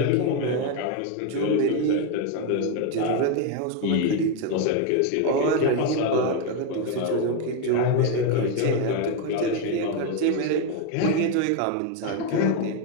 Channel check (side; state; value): both; different; correlation 0.01